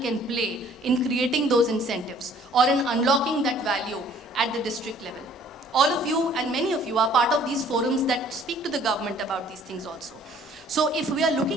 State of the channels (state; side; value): normal; both; correlation 0.56